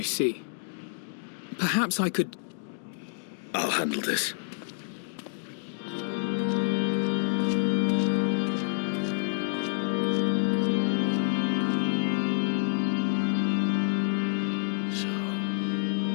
see. Perhaps I could... I'll handle this.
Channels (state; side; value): silent; right; digital silence